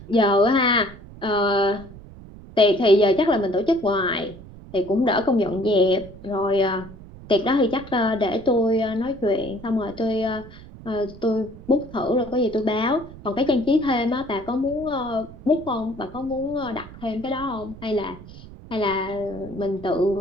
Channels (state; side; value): noise; right; rumble, 17 dB below the sound